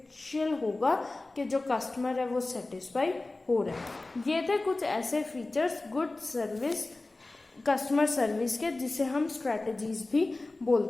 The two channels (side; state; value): right; quieter; 3.1 dB